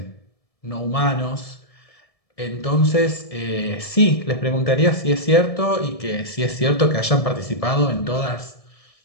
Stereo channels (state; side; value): late; right; 1.7 ms